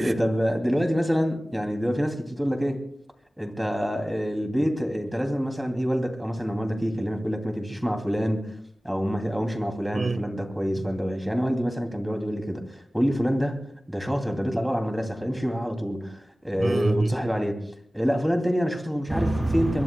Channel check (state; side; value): normal; both; correlation 0.97